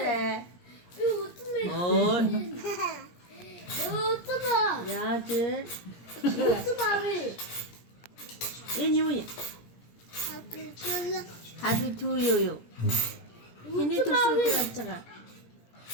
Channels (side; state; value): right; late; 17 ms